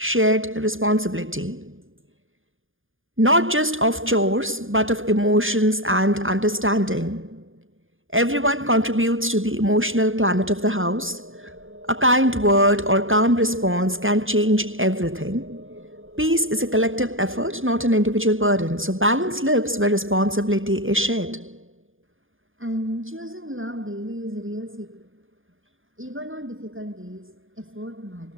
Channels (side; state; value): left; late; 0.59 ms